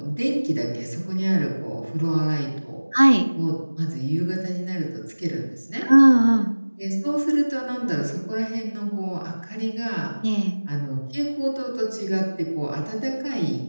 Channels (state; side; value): inverted; both; correlation -1.00